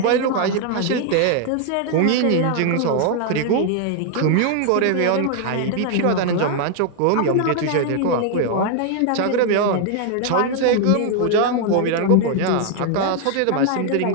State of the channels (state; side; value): different; both; correlation 0.00